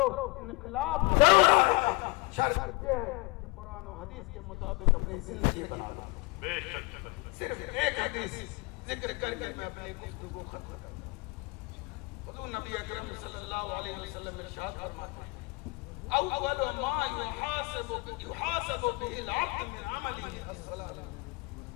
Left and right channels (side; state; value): right; quieter; 25.8 dB